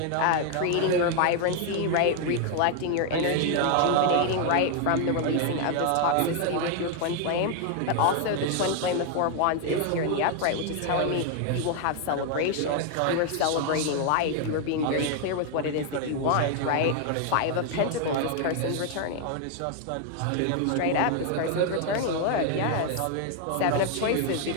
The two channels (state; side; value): different; both; correlation 0.00